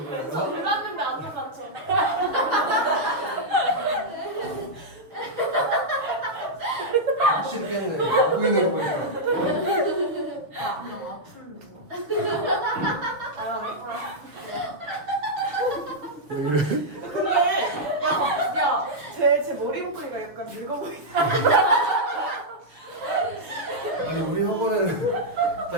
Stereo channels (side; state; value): left; late; 6.6 ms